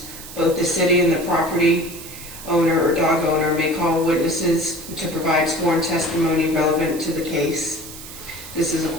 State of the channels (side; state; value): right; noise; hiss, 14 dB below the sound